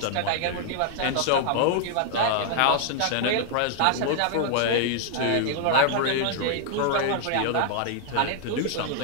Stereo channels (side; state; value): both; different; correlation 0.00